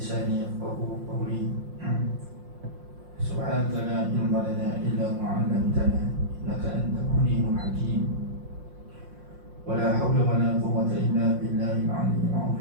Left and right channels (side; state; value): left; late; 5.6 ms